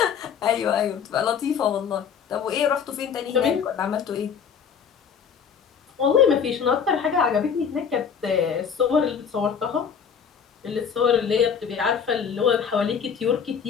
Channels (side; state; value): right; quieter; 7.0 dB